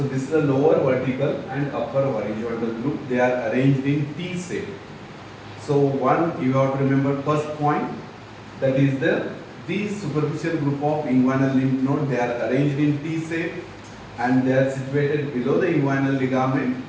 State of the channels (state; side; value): identical; both; correlation 1.00